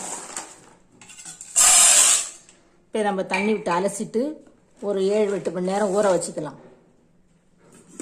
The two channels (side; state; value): both; identical; correlation 1.00